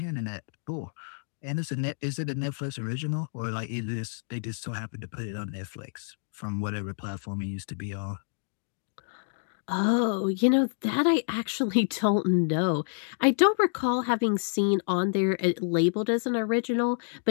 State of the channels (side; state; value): right; silent; digital silence